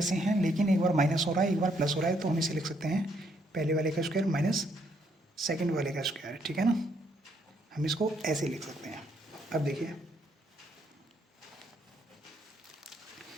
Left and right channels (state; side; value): normal; both; correlation 0.72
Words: हैं लेकिन एक बार माइनस हो रहा है एक बार प्लस हो रहा है, तो हम इसे लिख सकते हैं पहले वाले का स्क्वायर माइनस सेकंड वाले का स्क्वायर, ठीक है ना। हम इसको ऐसे लिख सकते हैं। अब देखिए